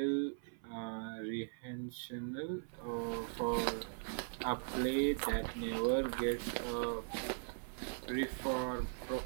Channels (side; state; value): left; silent; 51 dB below the other